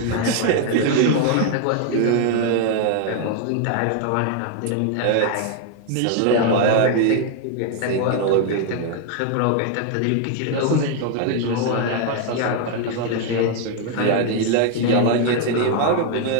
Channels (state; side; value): different; both; correlation 0.00